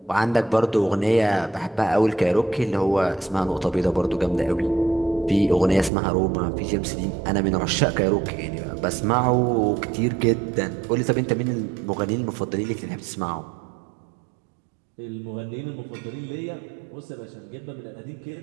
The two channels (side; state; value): left; drops out; at 5.9 s